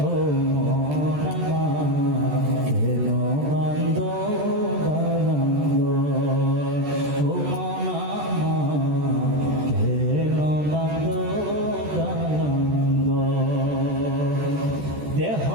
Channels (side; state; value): left; late; 14 ms